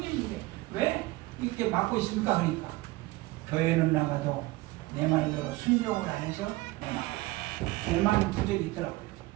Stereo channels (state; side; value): quieter; left; 20.1 dB